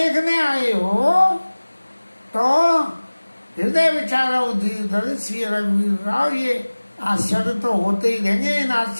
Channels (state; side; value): inverted; both; correlation -1.00